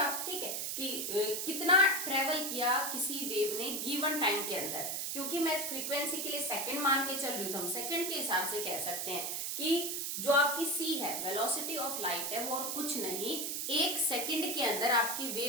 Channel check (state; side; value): noise; right; hiss, 2 dB below the sound